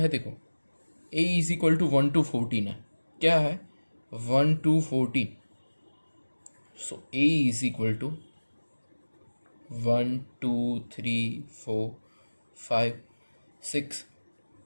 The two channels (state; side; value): inverted; both; correlation -1.00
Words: देखो, a is equal to 1 to 14 है। क्या है? 1 to 14। So a is equal to 1 2 3 4 5 6